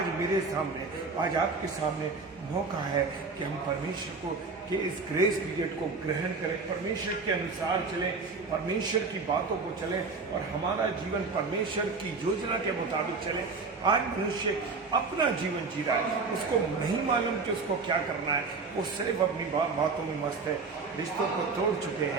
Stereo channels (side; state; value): left; quieter; 4.3 dB